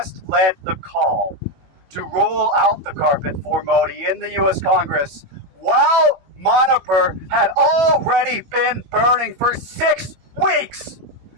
led the call to roll out the carpet for Modi in the U.S. Congress, while Manipur had already been burning for 6 weeks,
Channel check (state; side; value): late; left; 21 ms